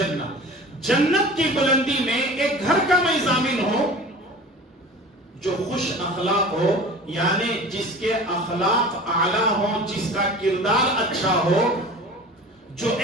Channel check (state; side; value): normal; both; correlation 0.39